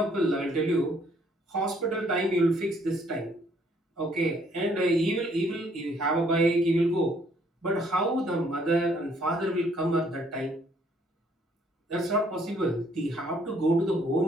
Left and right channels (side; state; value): both; normal; correlation 0.65